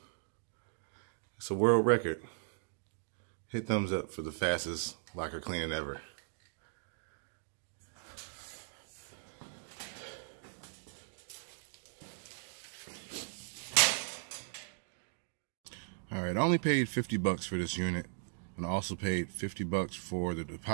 It's a world record. Hit thumbs up for the fastest locker cleaning ever. Alright, I only paid $50 for this unit, and I also paid $50 for the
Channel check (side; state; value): left; silent; digital silence